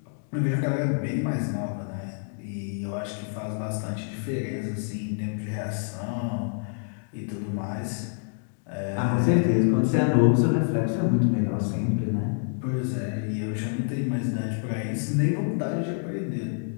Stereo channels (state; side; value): silent; right; 60 dB below the other